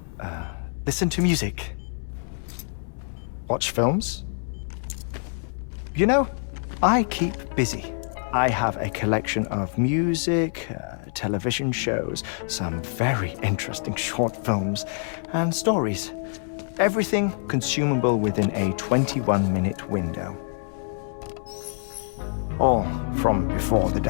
Listen to music. Watch films. You know, I keep busy. I have a collection of music, television shows, some very interesting short films, and stories. Everything consumable within a 21-minute window. All from before the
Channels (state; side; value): silent; right; digital silence